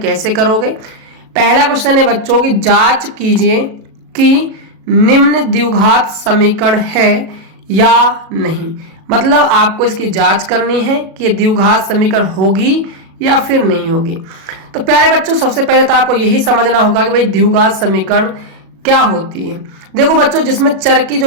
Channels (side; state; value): left; late; 37 ms